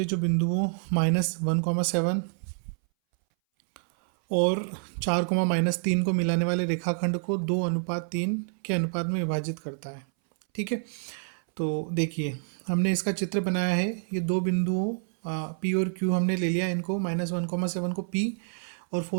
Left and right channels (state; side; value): silent; left; 60 dB below the other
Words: जो बिंदुओं -1,7 और 4, -3 को मिलाने वाले रेखाखंड को 2:3 के अनुपात में विभाजित करता है। ठीक है, तो देखिए हमने इसका चित्र बनाया है। ये दो बिंदुओं P और Q हमने ले लिया, इनको -1,7 को P और